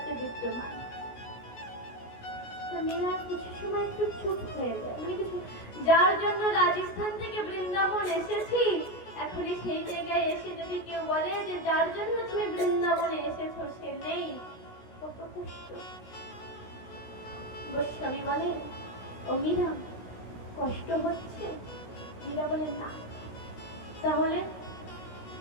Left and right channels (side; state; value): right; late; 16 ms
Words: বিদ্যমান। তো মীরা কিছু সময় একটু চুপ হয়ে যায়, যার জন্য রাজস্থান থেকে বৃন্দাবন এসেছি, এখনই সেই জায়গায় এসে যদি কেউ বলে যে যার জন্য তুমি বৃন্দাবনে এসেছো সে নেই, কত কষ্ট। গোস্বামী বলে, ও মীরা কষ্ট হচ্ছে? মীরা বলে না। তাহলে?